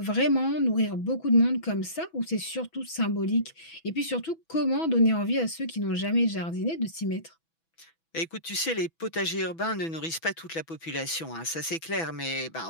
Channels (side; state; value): right; late; 6.1 ms